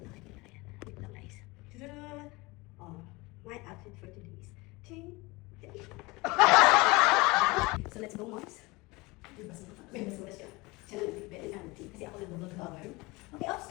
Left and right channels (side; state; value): right; quieter; 23.9 dB